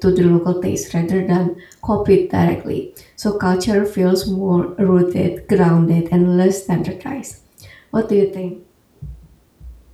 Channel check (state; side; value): identical; both; correlation 1.00